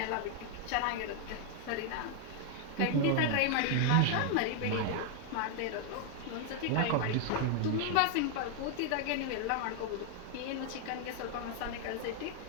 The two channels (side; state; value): both; different; correlation 0.00